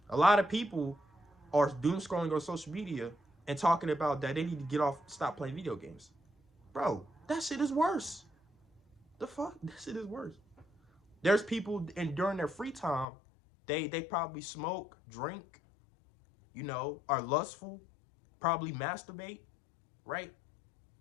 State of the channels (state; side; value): drops out; right; at 13.1 s